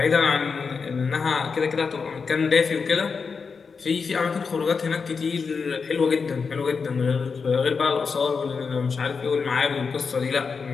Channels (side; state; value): right; quieter; 5.3 dB